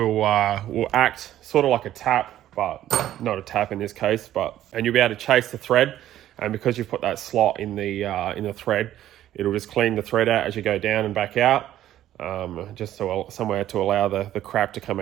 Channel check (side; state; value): left; quieter; 12.7 dB